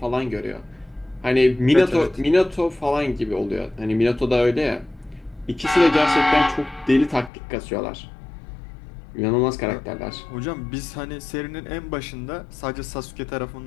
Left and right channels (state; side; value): drops out; right; at 7.3 s